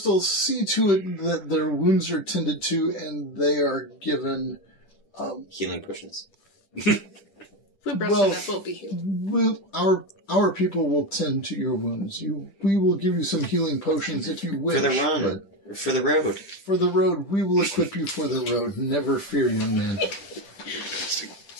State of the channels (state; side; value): late; right; 10 ms